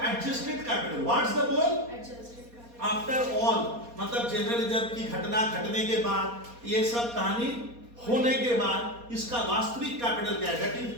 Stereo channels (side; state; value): left; late; 4.2 ms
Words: adjusted capital? What's the बोल? आफ्टर ऑल, मतलब जनरल रिजर्व की घटना घटने के बाद, ये सब कहानी होने के बाद इसका वास्तविक कैपिटल क्या है? That